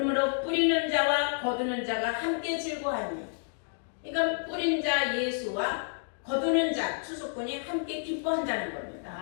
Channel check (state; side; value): silent; right; digital silence